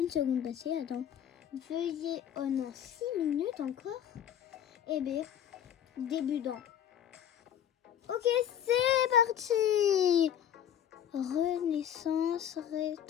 seconde passée, attends. Veuillez, oh non, 6 minutes encore. Eh bien, débutant. Ok, c'est parti. Renaissance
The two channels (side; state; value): right; quieter; 9.8 dB